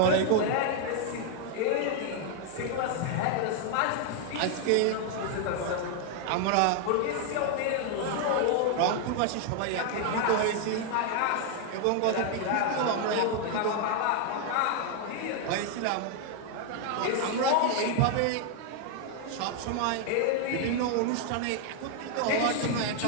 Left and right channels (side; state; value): both; different; correlation 0.00